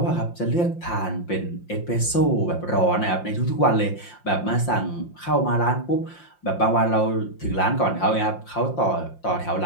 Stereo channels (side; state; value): right; late; 5.7 ms